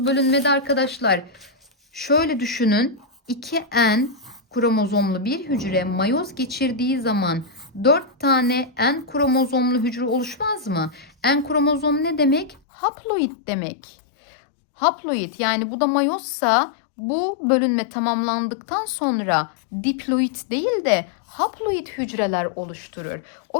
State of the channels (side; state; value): right; drops out; at 12.6 s